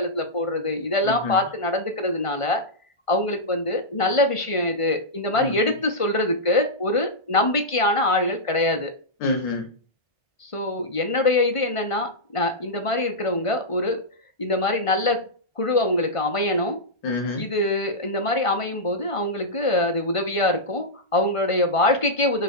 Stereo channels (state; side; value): late; right; 1.5 ms